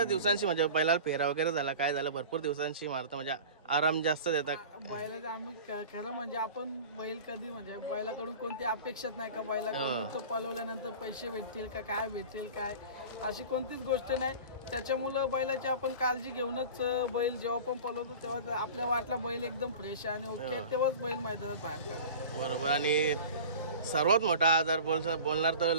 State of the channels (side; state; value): both; inverted; correlation -0.38